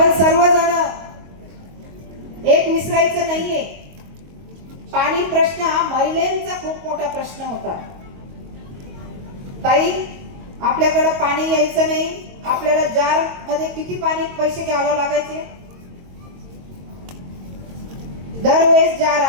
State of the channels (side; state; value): left; late; 22 ms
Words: सर्वजण एक विसरायचं नाहीये. पाणी प्रश्न हा महिलांचा खूप मोठा प्रश्न होता. ताई, आपल्याकडे पाणी यायचं नाही. आपल्याला जार मध्ये किती पाणी पैसे घ्यावं लागायचे? दरवेळेस जार